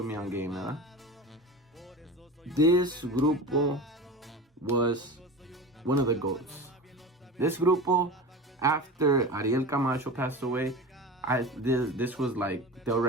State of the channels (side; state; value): both; normal; correlation 0.31